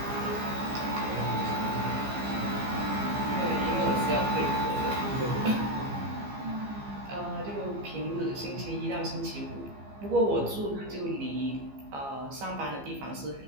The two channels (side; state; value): left; late; 15 ms